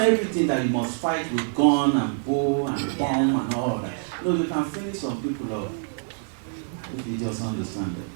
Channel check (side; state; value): left; silent; digital silence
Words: that you must fight with gun and bow and bomb and all that. No, you can finish some people off if you just understand it.